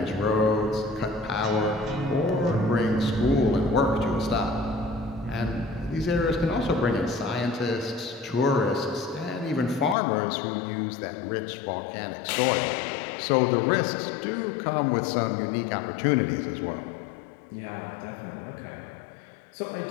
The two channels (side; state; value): right; drops out; at 10.0 s